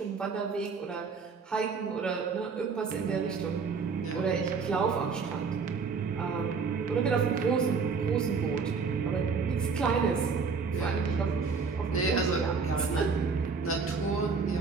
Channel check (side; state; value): left; quieter; 5.1 dB